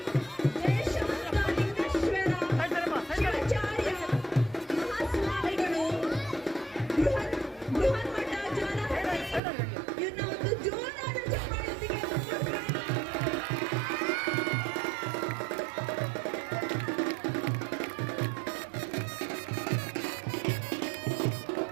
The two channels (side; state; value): left; drops out; at 9.4 s